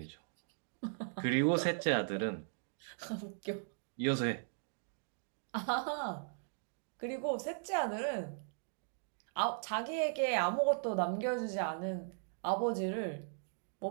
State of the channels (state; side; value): silent; left; digital silence